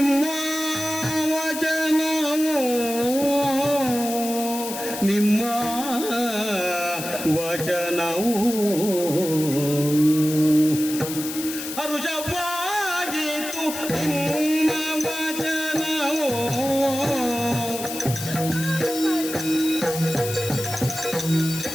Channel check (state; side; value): noise; left; hiss, 8 dB below the sound